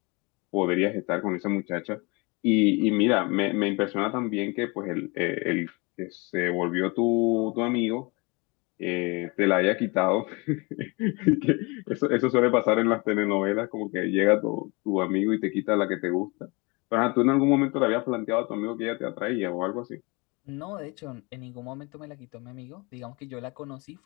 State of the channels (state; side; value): quieter; right; 27.7 dB